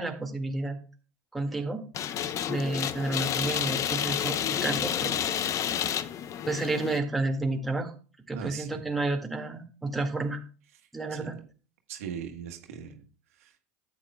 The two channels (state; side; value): normal; both; correlation 0.45